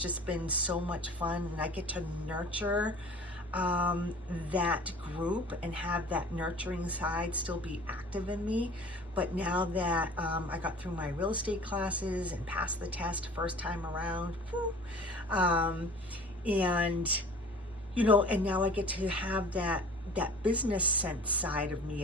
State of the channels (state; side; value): normal; both; correlation 0.44